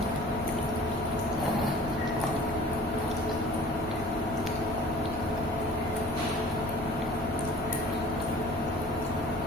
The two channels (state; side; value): normal; both; correlation 0.46